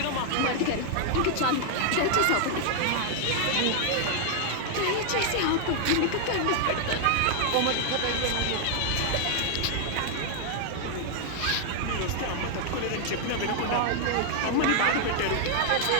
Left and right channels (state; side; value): different; both; correlation 0.00